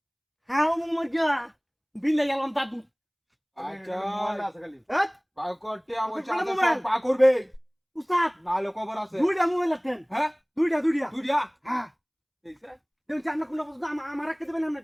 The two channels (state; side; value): identical; both; correlation 1.00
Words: হাও মজা বিলে গেলাম দাদু আচ্ছা মোবাইল আছে খালি বা কর টিয়া বুঝা কোন আছে মোবাইল? সব বা করবে উস্তাদ নালে খবর আছে দুইটা মোবাইল আছেন হ্যাঁ দুইটা তুই দিয়া হ্যাঁ এইসে দেন জানা কোন বস্তু আমার রাখতে দেবেন আমরা